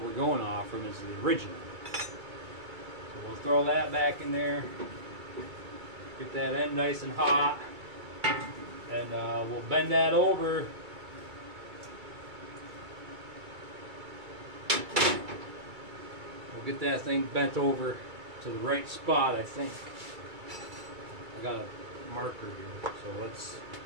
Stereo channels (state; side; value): late; left; 2.3 ms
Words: we're going off from, is the original. So we'll throw that back in there, get that end nice and hot, and we'll bend that over. We'll get that thing bent over to the right spot, I think. I got a marker here, so let's